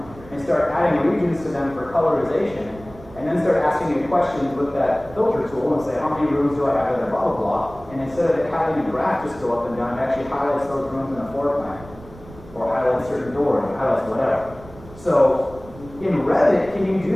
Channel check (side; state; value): right; noise; rumble, 19 dB below the sound